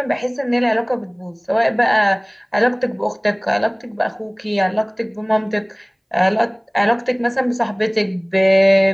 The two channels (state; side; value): identical; both; correlation 1.00